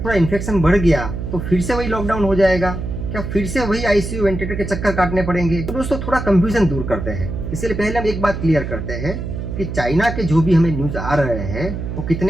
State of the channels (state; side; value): noise; right; hum, 5 dB below the sound